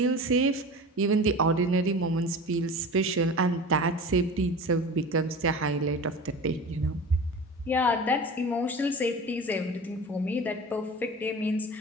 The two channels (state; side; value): normal; both; correlation 0.34